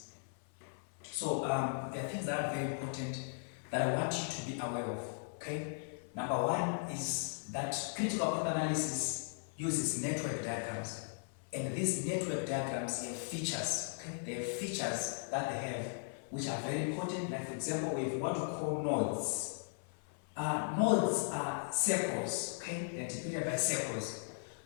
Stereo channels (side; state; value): right; silent; 53 dB below the other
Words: There are things that are very important that I want you to be aware of. Okay. Number one is that critical path analysis uses network diagrams, and these network diagrams have features. Okay, they have features that they have which are very important. Like for example, we have what we call nodes. Nodes are circles, okay? They're depicted by circles.